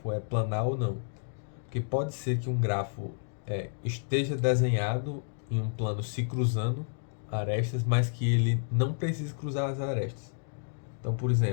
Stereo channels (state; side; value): silent; right; digital silence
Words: é planar ou não? Porque pode ser que um grafo esteja desenhado em um plano se cruzando arestas, mas que ele não precise cruzar as arestas. Então, por